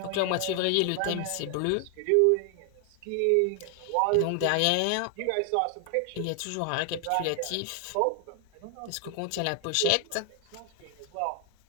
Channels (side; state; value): both; different; correlation 0.00